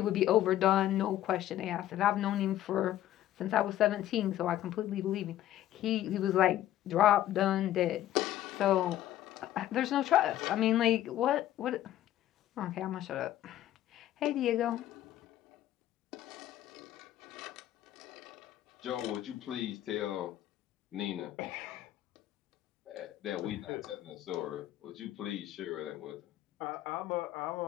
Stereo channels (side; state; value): right; quieter; 13.0 dB